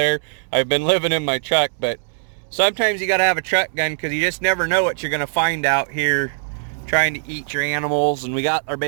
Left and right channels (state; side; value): silent; left; digital silence